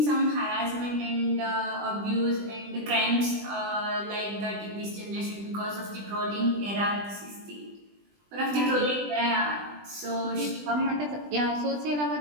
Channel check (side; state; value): left; late; 20 ms